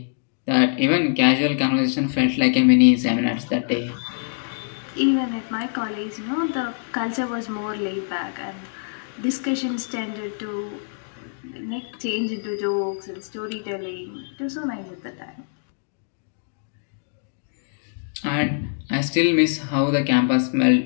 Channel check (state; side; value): silent; right; digital silence